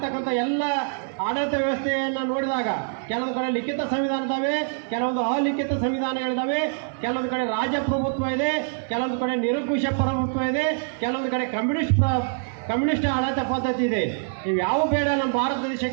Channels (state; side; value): silent; left; 62 dB below the other